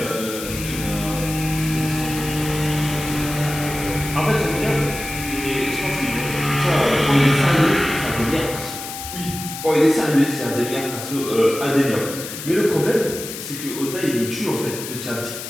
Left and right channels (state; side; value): noise; left; hiss, 9 dB below the sound